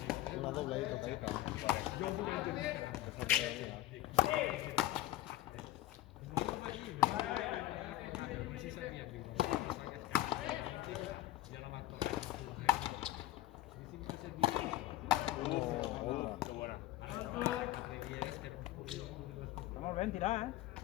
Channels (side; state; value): right; quieter; 15.4 dB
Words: Una doble ahí tocadita. Qué buena. Vamos bien, tirada,